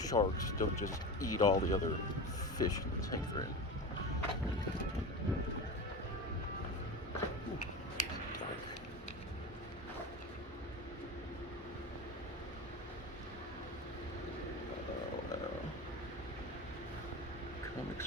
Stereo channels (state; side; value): normal; both; correlation 0.27